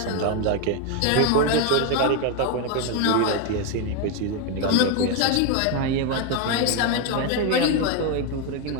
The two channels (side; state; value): both; different; correlation 0.01